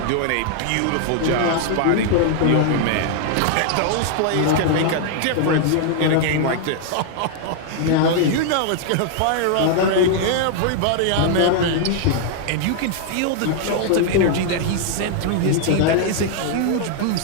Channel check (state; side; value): different; both; correlation -0.01